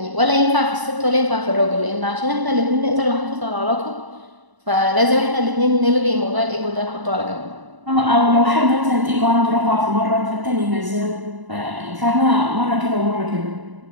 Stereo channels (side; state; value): left; late; 1.0 ms